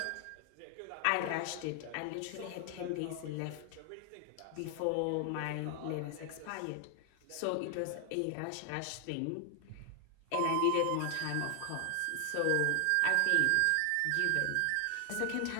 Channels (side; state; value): both; different; correlation 0.00